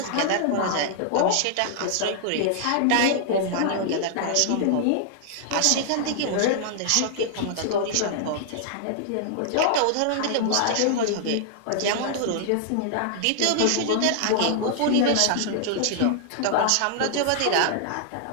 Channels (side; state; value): both; different; correlation -0.01